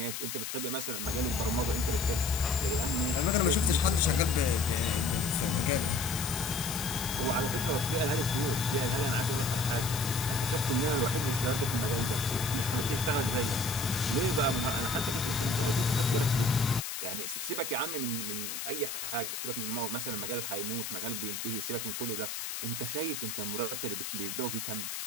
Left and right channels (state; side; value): noise; left; hiss, 5 dB below the sound